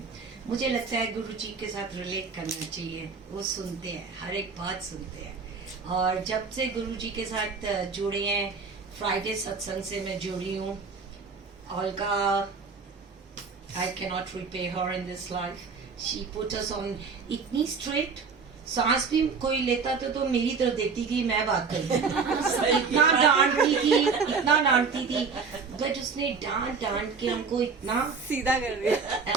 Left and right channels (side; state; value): left; quieter; 5.1 dB